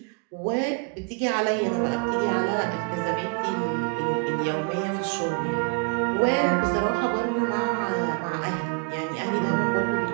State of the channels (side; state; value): left; quieter; 33.0 dB